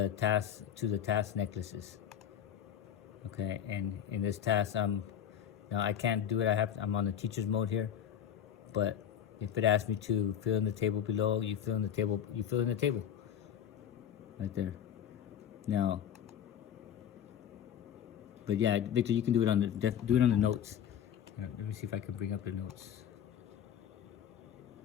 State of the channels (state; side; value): quieter; right; 9.4 dB